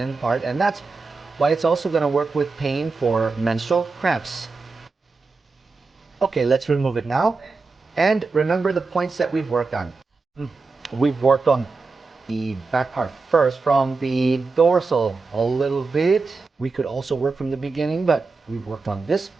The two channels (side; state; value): left; quieter; 4.1 dB